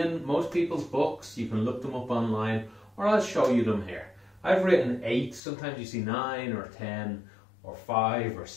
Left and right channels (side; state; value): right; drops out; at 5.4 s